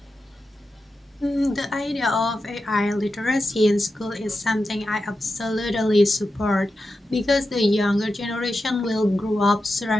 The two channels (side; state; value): both; normal; correlation 0.90